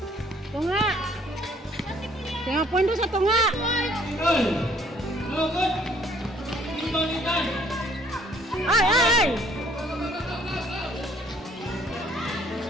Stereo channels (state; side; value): normal; both; correlation 0.60